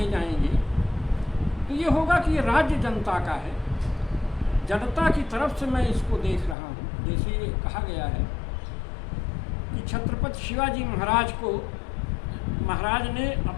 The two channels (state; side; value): drops out; right; at 6.6 s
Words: जाएंगे तो ये होगा कि ये राज्य जनता का है, जनता की तरफ से मैं इसको देख रहा हूँ। जैसे ये कहा गया है कि छत्रपति शिवाजी महाराज को महाराज ने